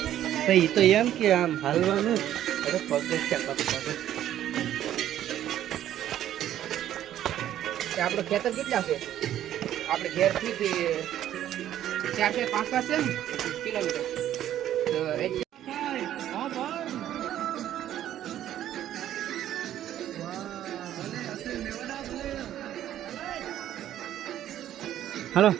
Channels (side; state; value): left; quieter; 11.8 dB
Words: તો એમ કે આમ હાલવાનું આપણો ખેતર કેટલા છે? આપણે ઘેરથી 4-5 છે ને કિલોમીટર. હલો